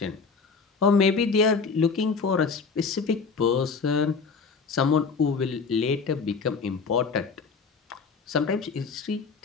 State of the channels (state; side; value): quieter; right; 5.0 dB